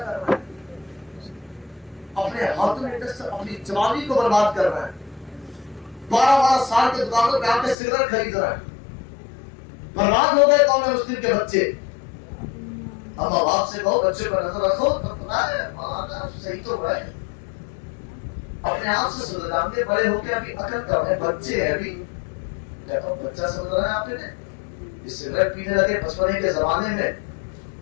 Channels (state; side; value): drops out; right; at 7.8 s